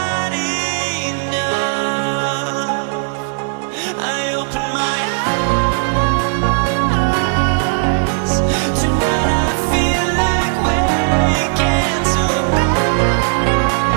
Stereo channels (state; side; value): silent; left; digital silence